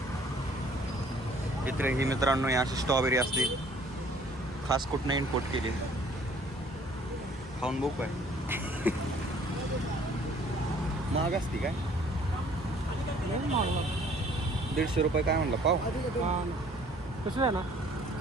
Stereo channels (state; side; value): normal; both; correlation 0.57